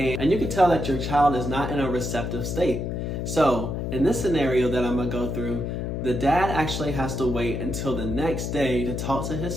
you can tell that your child is not in a receptive state. So in this scenario that I'm gonna go through, the dad actually has to wait until the next day to talk to his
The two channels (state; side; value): noise; left; hum, 3 dB below the sound